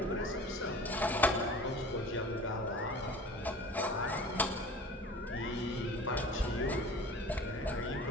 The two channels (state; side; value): normal; both; correlation 0.41